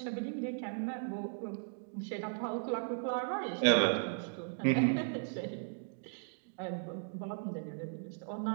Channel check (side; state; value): left; silent; digital silence